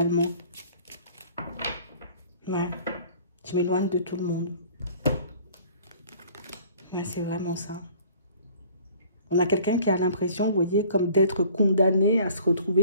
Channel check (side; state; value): both; inverted; correlation -0.52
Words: Ouais, je m'éloigne de tout le monde. Mais c'est vraiment ça. On a quelqu'un qui a l'impression, vous voyez, comme d'être condamné à se